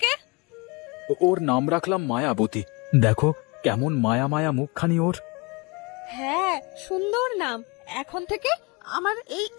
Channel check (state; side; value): quieter; right; 27.0 dB